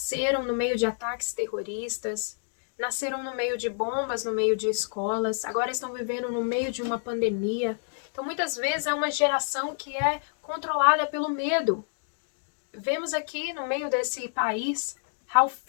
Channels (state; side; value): silent; right; digital silence